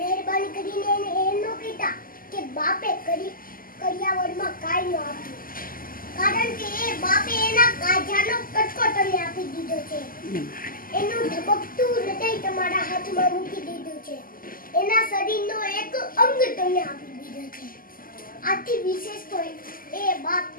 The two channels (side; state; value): right; late; 0.41 ms